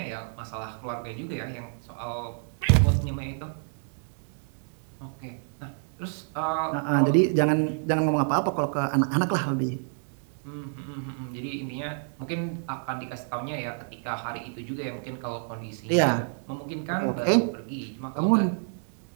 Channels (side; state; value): left; silent; digital silence